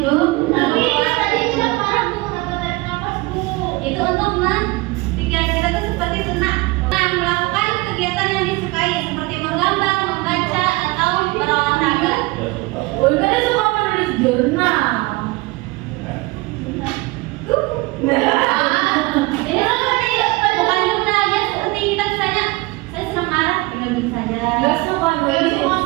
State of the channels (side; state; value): left; quieter; 23.1 dB